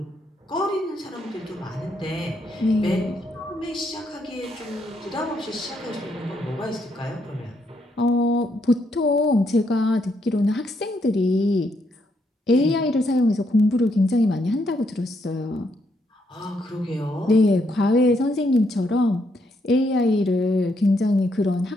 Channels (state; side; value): normal; both; correlation 0.76